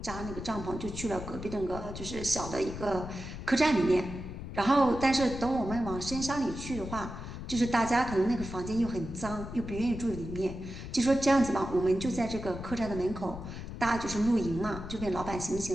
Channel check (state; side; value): noise; left; rumble, 9 dB below the sound